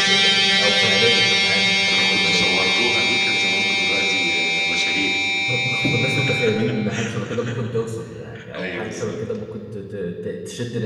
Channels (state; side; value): identical; both; correlation 1.00